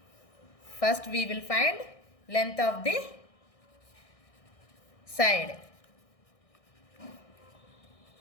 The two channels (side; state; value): right; late; 1.6 ms